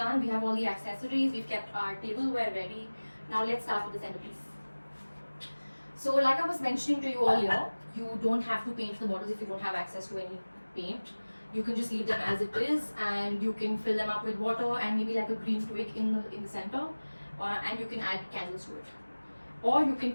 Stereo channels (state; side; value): inverted; both; correlation -1.00